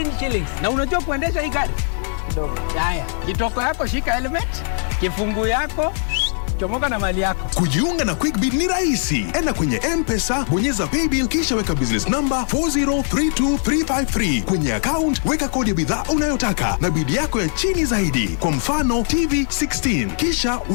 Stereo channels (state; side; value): silent; right; 65 dB below the other